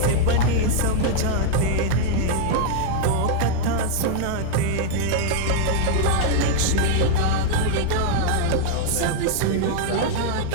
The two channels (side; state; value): both; different; correlation -0.01